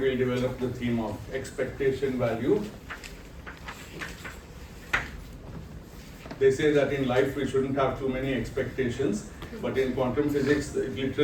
develop the theme of expectation value. They say that in life we shouldn't have too many expectations, but in quantum physics,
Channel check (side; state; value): both; identical; correlation 1.00